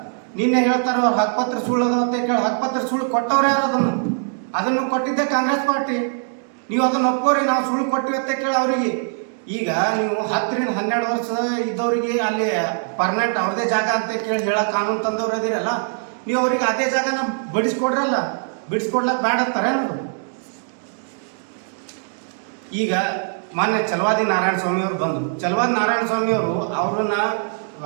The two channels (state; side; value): silent; left; digital silence